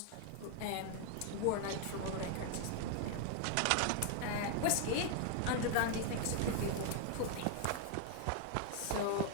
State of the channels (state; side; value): different; both; correlation 0.00